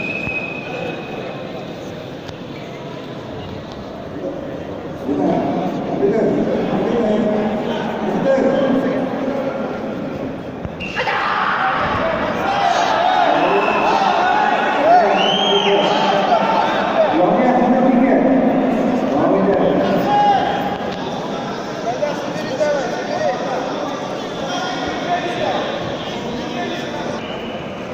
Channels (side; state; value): both; identical; correlation 1.00